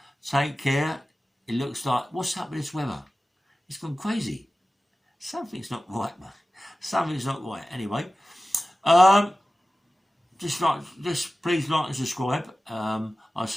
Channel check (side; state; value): both; normal; correlation 0.96